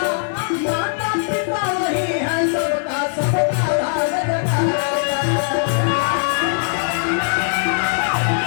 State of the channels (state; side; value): silent; right; digital silence